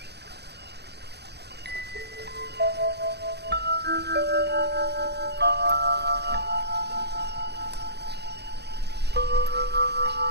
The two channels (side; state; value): left; late; 0.48 ms